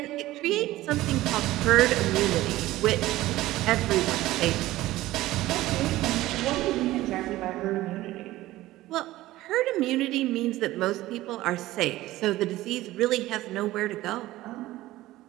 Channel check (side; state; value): left; quieter; 16.6 dB